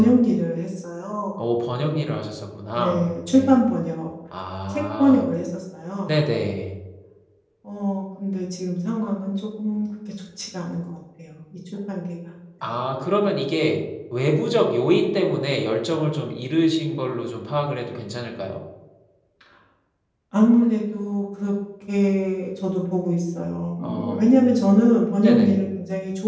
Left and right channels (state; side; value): identical; both; correlation 1.00